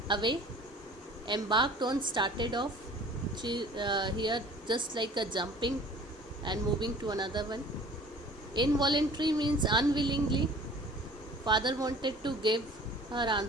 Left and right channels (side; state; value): both; normal; correlation 0.47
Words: away. Embarked on, started off. Here just like a jumping and moving to another one. Involuntary means unwillingly. Father wanted to give her